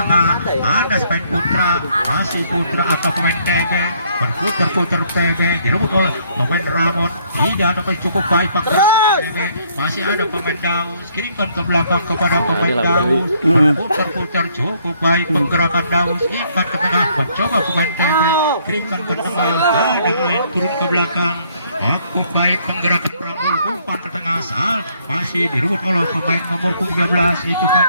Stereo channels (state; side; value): inverted; both; correlation -0.66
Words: ada pemain putra, masih putra atau pemain TB, berputar-putar TB direbut oleh pemain Ramon, tidak ada cukup baik pakai TB, masih ada pemain Daus, kirimkan ke belakang kepada pemain Daus, berputar-putar cukup baik penggerakan Daus, ikat ke tengah, mencoba pemain TB, kirimkan ke tengah, ada turun ke belakang, aku baik penggerakan Ramon, umpan ke tengah, sal masih direbut oleh pemain nomor 13 itu